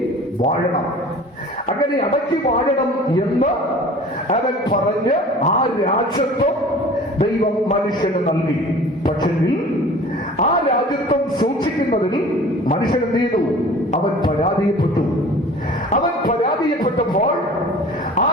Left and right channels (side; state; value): both; normal; correlation 0.44